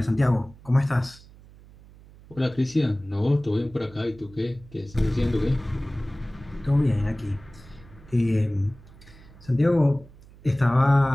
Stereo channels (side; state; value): right; noise; hum, 22 dB below the sound